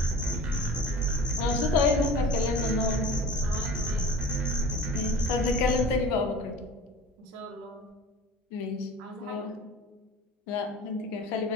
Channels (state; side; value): normal; both; correlation 0.40